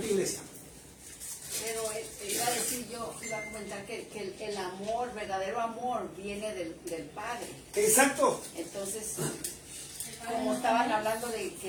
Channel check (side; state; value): both; identical; correlation 1.00